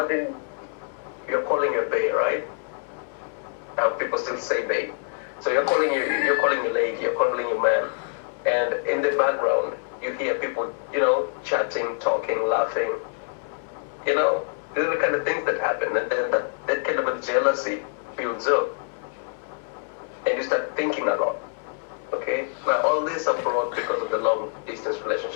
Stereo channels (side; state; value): right; silent; 61 dB below the other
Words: you're calling your bae, right? Now people still say bae. So you're calling your lady, you're calling your man, and in the background you hear people, you know, chatting, talking, laughing. You know, these are the kind of things that happen, and then that kind of a jealousy builds up, and you start thinking a lot. Okay? Now all this are brought because of the long distance